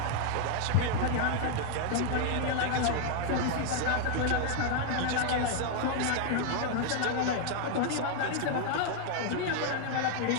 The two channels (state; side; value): different; both; correlation 0.00